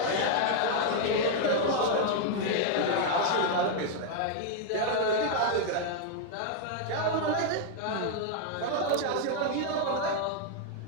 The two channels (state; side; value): different; both; correlation 0.00